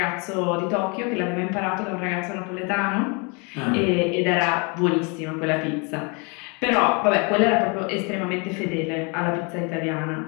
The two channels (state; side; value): quieter; right; 32.1 dB